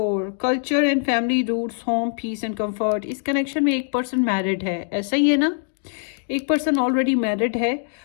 culture and family roots, home, peace and comfort. इस कनेक्शन में एक पर्सन मैरिड है, ऐसा ही है ना? एक पर्सन ऑलरेडी मैरिड है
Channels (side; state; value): right; silent; digital silence